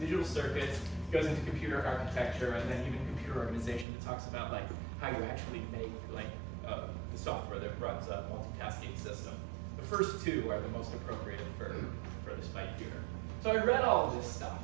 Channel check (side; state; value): left; drops out; at 3.9 s